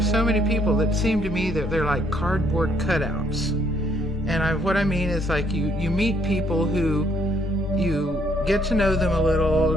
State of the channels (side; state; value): both; normal; correlation 0.68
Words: many people that seem to me that they're like cardboard cutouts. And what I mean is, like, you meet people who you get to know them a little,